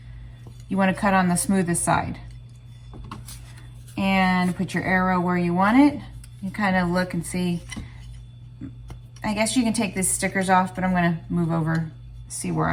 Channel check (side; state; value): both; identical; correlation 1.00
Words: You wanna cut on the smoothest side. And put your arrow where you want it. You kind of look and see. I guess you can take these stickers off, but I'm going to move over, see where